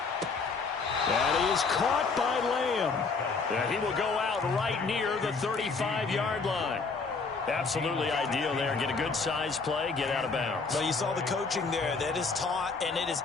And he is caught by Lamb. And he will go out right near the 35-yard line. Absolutely ideal there. Get a good size play, get out of bounds. Well, you saw the coaching there. That is taught and it is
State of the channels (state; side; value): quieter; right; 4.5 dB